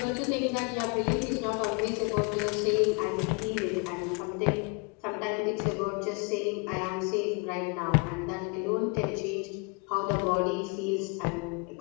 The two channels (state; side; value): quieter; right; 31.4 dB